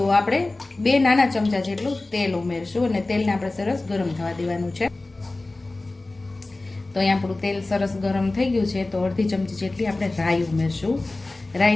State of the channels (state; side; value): quieter; right; 3.0 dB